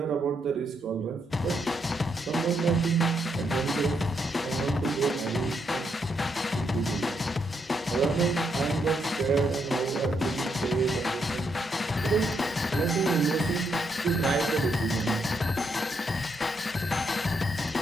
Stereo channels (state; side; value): normal; both; correlation 0.78